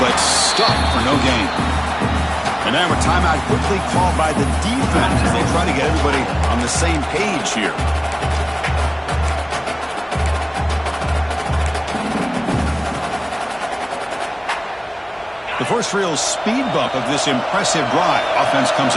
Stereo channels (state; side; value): identical; both; correlation 1.00